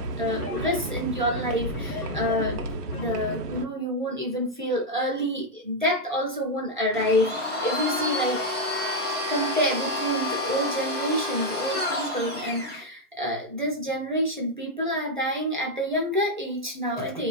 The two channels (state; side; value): normal; both; correlation 0.00